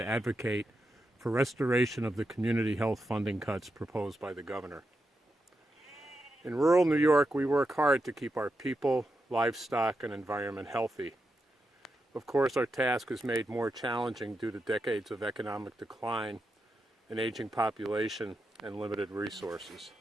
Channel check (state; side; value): normal; both; correlation 0.87